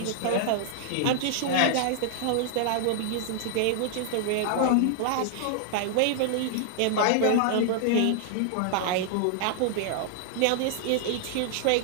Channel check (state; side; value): different; both; correlation -0.01